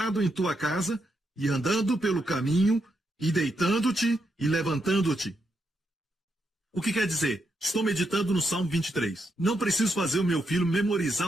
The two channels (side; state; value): both; normal; correlation 0.81